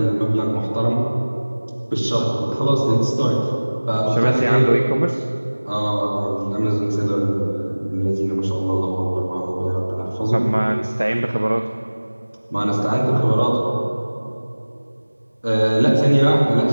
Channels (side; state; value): both; inverted; correlation -1.00